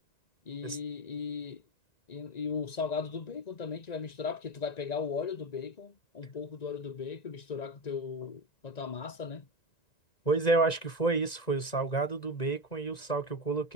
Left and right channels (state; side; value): late; right; 1.9 ms